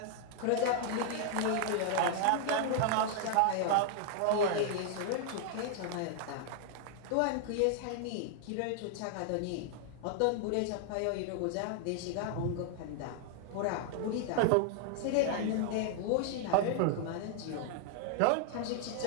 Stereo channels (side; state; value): both; different; correlation 0.00